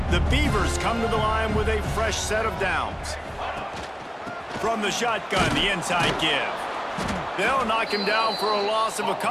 The Beavers come to the line with a fresh set of downs. From the shotgun, the inside give. They'll knock him down for a loss of a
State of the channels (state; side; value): identical; both; correlation 1.00